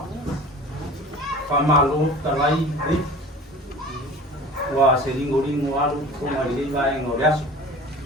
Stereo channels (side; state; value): both; normal; correlation 0.40